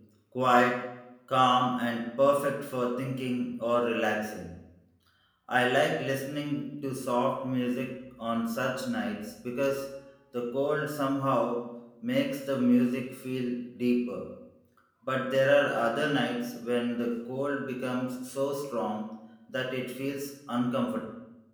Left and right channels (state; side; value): identical; both; correlation 1.00